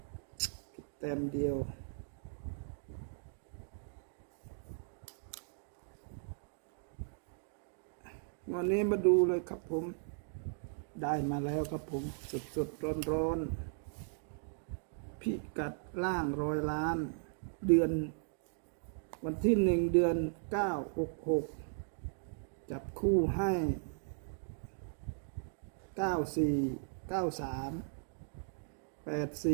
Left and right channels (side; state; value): left; silent; digital silence